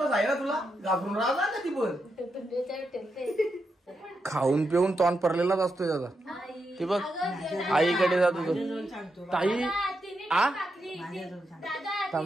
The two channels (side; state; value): both; normal; correlation 0.84